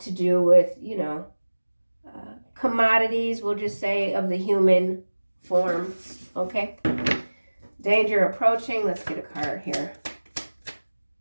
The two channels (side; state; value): both; inverted; correlation -1.00